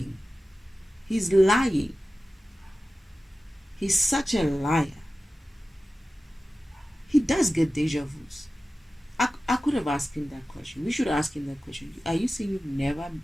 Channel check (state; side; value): normal; both; correlation 0.95